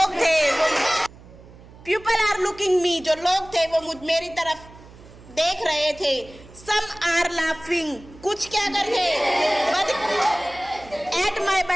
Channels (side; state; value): right; noise; hum, 21 dB below the sound